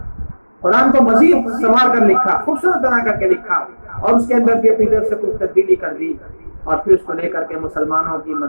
قرآن کو مزید سنوار کر لکھا، خوبصورت بنا کر کے لکھا، اور اس کے اندر بھی اپنی طرف سے کچھ تبدیلی کر دی، اور پھر اس کو لے کر کے مسلمانوں کی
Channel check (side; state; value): both; inverted; correlation -1.00